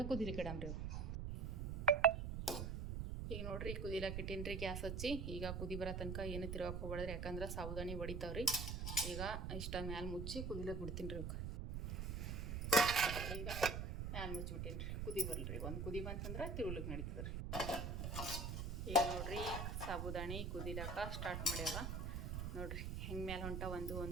ಕುದಿಲಿಕ್ಕೆ ಇಡಮ್ರಿ. ಈಗ ನೋಡ್ರಿ ಕುದಿಲಕ್ಕೆ ಇಟ್ಟೀನಿ ರೀ ಗ್ಯಾಸ್ ಹಚ್ಚಿ. ಈಗ ಕುದಿ ಬರೋ ತನಕ ಏನು ತಿರ್ಗಕ್ಕೆ ಹೋಗ್ಬೇಡ್ರಿ. ಯಾಕಂದ್ರೆ ಸಾಬುದಾನಿ ಹೊಡಿತಾವ್ರಿ. ಈಗ ಇಷ್ಟ ಮ್ಯಾಲೆ ಮುಚ್ಚಿ ಕುದಿಲಕ್ಕೆ ಬಿಡ್ತೀನಿ ರೀ. ಈಗ ಮ್ಯಾಲೆ ಮುಚ್ಚಿಬಿಟ್ಟೀನಿ ರೀ. ಕುದಿ ಬರಲ್ರಿ. ಒಂದು ಕುದಿ ಬಂತಂದ್ರೆ ತಿರುಗ್ಲಿಕ್ಕೆ ನಡೀತದೆ ರೀ. ಈಗ ನೋಡ್ರಿ ಸಾಬುದಾನಿ ಕುದಿಲಕ್ಕೆ ಸ್ಟಾರ್ಟ್ ಮಾಡ್ಯಾವ ನೋಡ್ರಿ. ಹೆಂಗೆ ಮ್ಯಾಲೆ ಹೊಂಟ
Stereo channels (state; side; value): noise; right; rumble, 3 dB below the sound